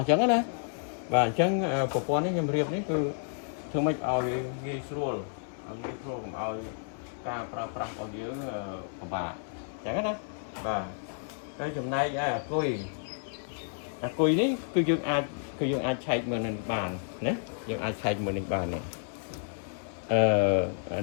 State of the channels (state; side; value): silent; right; digital silence